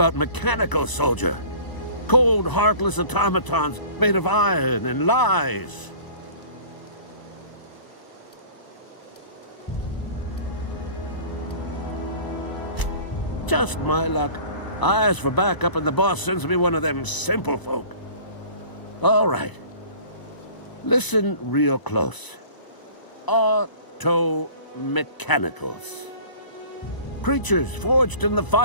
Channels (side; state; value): right; late; 1.0 ms